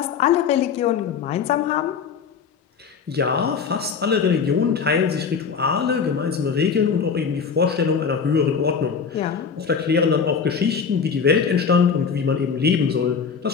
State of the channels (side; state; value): right; quieter; 6.2 dB